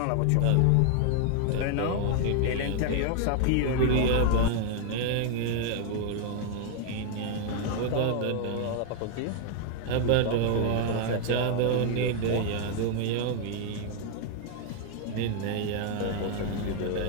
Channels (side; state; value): both; different; correlation 0.00